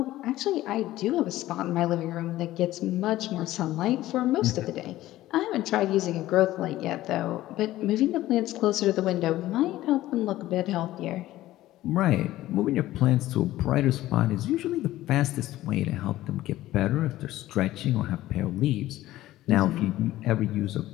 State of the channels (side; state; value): right; quieter; 15.4 dB